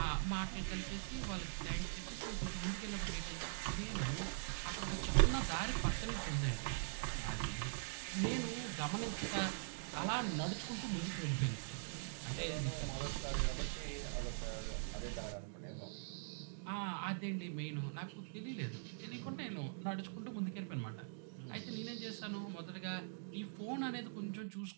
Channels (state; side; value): silent; left; digital silence